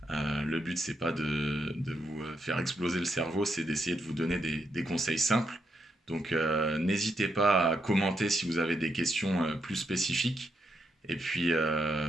Le but c'est pas de vous faire exploser le cerveau, c'est d'essayer de vous donner des conseils simples. Donc n'hésitez pas à commenter si vous avez des questions plus spécifiques et puis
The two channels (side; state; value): both; normal; correlation 0.80